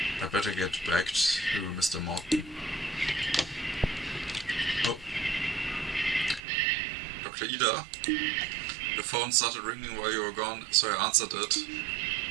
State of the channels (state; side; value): drops out; left; at 6.4 s